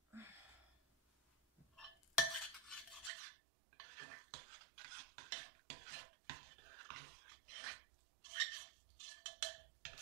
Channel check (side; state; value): left; drops out; at 3.1 s